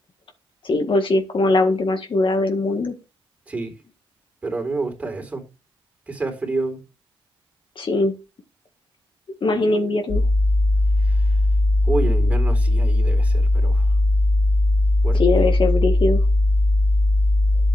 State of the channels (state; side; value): normal; both; correlation 0.88